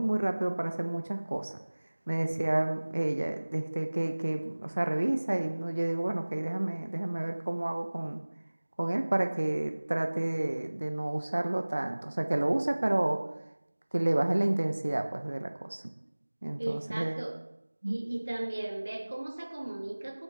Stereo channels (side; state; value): both; inverted; correlation -1.00